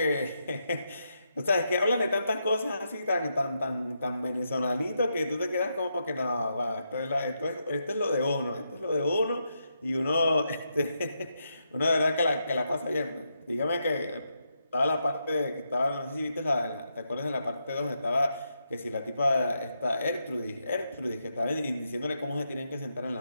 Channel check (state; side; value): inverted; both; correlation -0.82